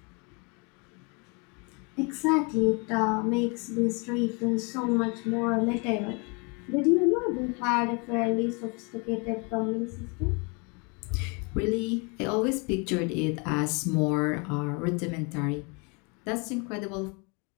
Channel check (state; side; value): quieter; right; 32.3 dB